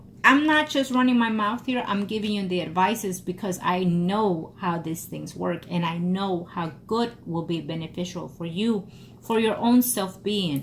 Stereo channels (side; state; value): both; identical; correlation 1.00